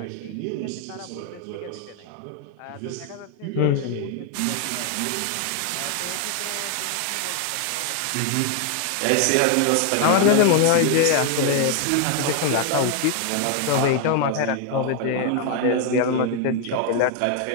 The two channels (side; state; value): both; different; correlation 0.01